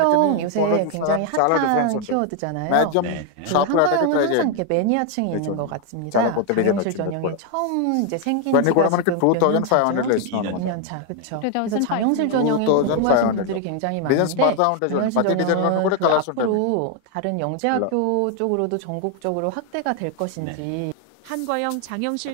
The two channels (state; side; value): different; both; correlation 0.01